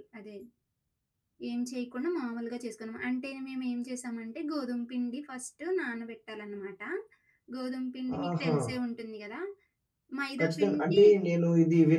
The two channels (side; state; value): both; identical; correlation 1.00